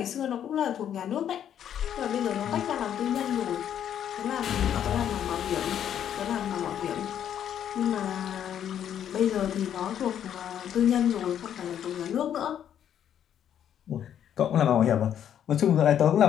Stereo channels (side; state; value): right; quieter; 9.7 dB